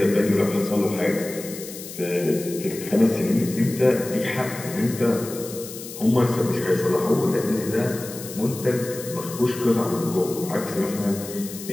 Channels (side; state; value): left; noise; hiss, 12 dB below the sound